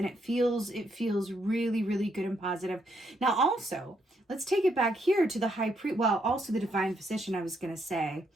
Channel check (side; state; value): both; normal; correlation 0.75